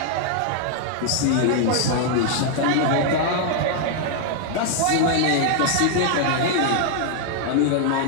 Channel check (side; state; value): both; different; correlation 0.00